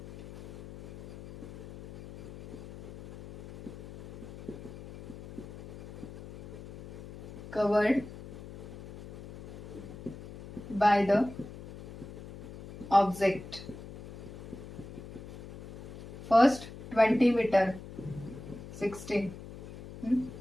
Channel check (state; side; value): noise; left; hum, 13 dB below the sound